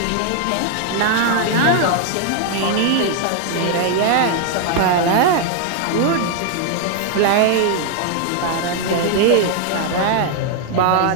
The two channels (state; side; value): different; both; correlation 0.00